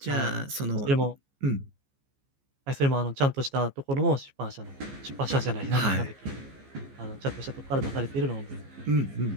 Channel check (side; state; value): left; late; 15 ms